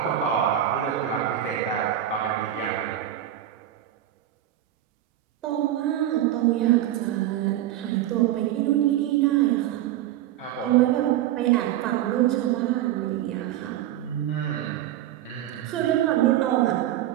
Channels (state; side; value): quieter; left; 12.5 dB